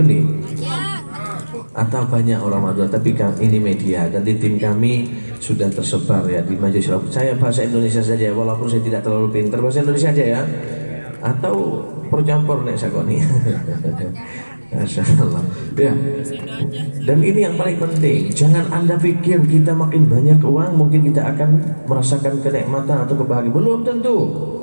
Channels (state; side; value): inverted; both; correlation -1.00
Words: benih, atau banyak orang Madura. Tapi ini media dan di tim kami sudah tersebar ya di majelis. Saya bahasa Indonesia saja, walaupun saya tidak terlalu pintar bahasa Indonesia aja ya, atau percampur nek sakoni. Masyaallah. Ya. Dan ini yang paling penting, jangan Anda pikir kita makin banyak uang mungkin kita akan merasakan kenikmatan atau kebahagiaan. Belum tentu.